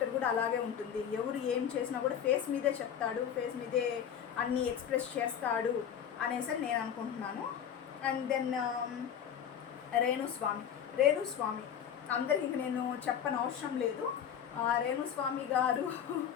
కూడా అలాగే ఉంటుంది. ఎవరు ఏం చేసినా కూడా ఫేస్ మీదే చెప్తాడు, ఫేస్ మీదే అన్నీ ఎక్స్ప్రెస్ చేస్తాడు అనేసి నేను అనుకుంటున్నాను. అండ్ దెన్ రేణుస్వామి అందరికి ఇంక నేను చెప్పని అవసరం లేదు. Renuswamy garu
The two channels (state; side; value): quieter; right; 8.7 dB